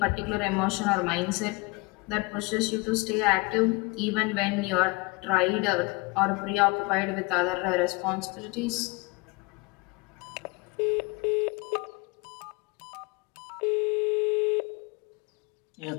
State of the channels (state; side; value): quieter; right; 26.4 dB